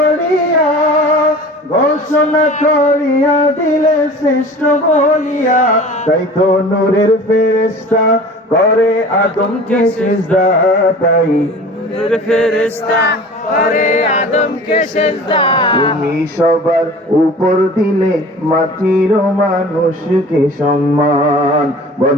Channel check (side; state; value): both; normal; correlation 0.41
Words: ঘোষণা করিয়া দিলে শ্রেষ্ঠ বলিয়া তাই তো নূরের ফেরেশতা করে আদমকে সিজদা তাই নূরের ফেরেশতা করে আদমকে সেজদা তুমি সবার উপর দিলে মাটির মানুষকে সম্মান